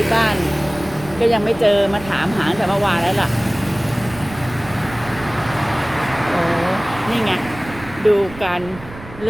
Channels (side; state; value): right; noise; rumble, 16 dB below the sound